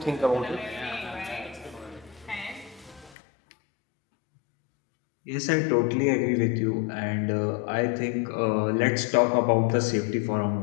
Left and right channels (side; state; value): right; drops out; at 3.2 s